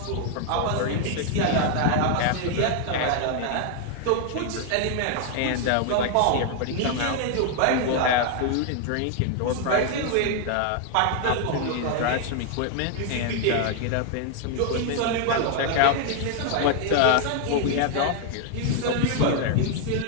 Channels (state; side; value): different; both; correlation 0.00